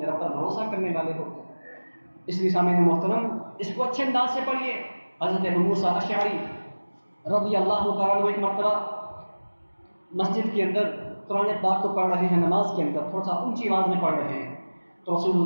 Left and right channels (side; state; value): both; inverted; correlation -1.00